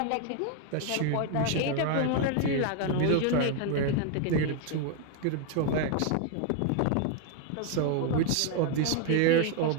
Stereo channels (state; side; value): different; both; correlation 0.00